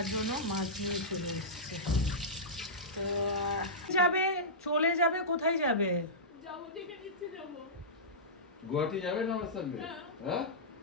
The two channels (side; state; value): both; normal; correlation -0.15